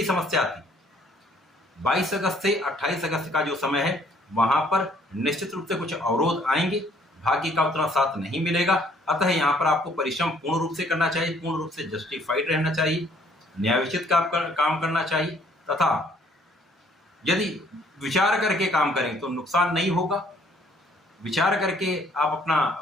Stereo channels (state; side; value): normal; both; correlation 0.62